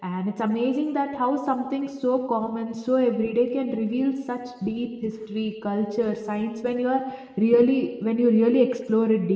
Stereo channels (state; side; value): identical; both; correlation 1.00